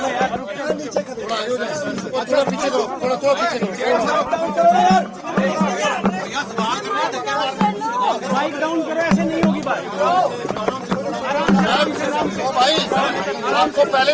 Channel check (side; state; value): both; identical; correlation 1.00